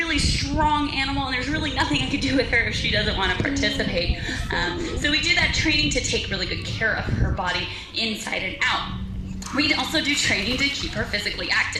strong animal, and there's really nothing I could do with her if she doesn't want to participate. So we do that training to take really good care of her body inside and out. We also do training to keep her physically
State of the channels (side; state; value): both; identical; correlation 1.00